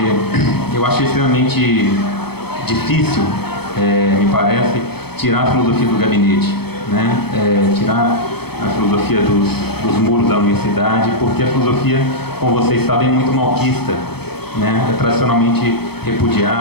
eu acho extremamente difícil, me parece, tirar a filosofia do gabinete, tirar a filosofia dos muros da universidade, porque a filosofia, como vocês sabem, é muito malquista, é tradicionalmente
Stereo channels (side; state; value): right; late; 0.97 ms